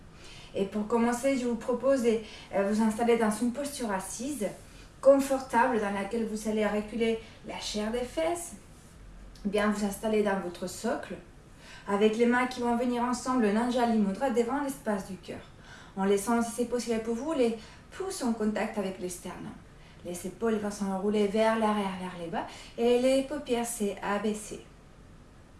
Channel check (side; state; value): both; identical; correlation 1.00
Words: Et pour commencer, je vous propose de vous installer dans une posture assise confortable dans laquelle vous allez reculer la chair des fesses, bien vous installer dans votre socle, avec les mains qui vont venir ensemble, le Anjali Mudra devant l'espace du cœur, en laissant, si c'est possible pour vous, les pouces en contact avec le sternum. Les épaules vont s'enrouler vers l'arrière, vers les bas, et les paupières s'abaisser.